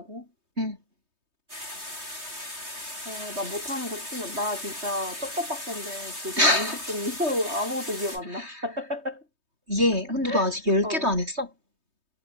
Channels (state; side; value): late; left; 3.2 ms